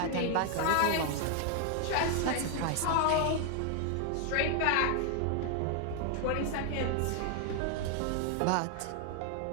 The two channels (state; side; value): different; both; correlation 0.00